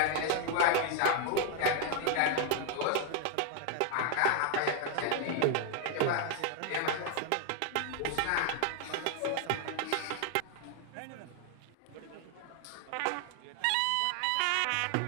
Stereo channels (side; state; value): both; different; correlation 0.00